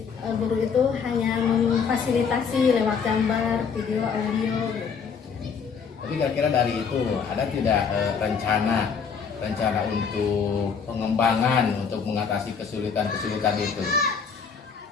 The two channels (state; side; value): quieter; right; 6.2 dB